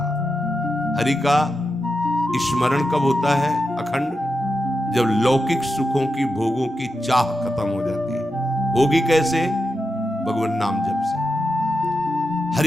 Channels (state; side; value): normal; both; correlation 0.88